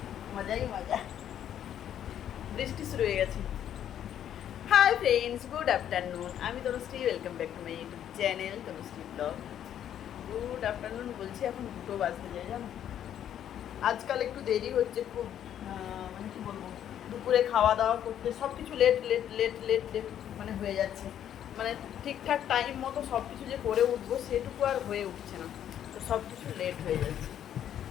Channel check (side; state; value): right; quieter; 10.2 dB